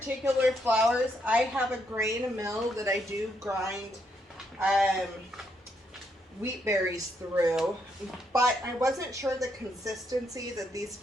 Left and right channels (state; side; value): normal; both; correlation 0.76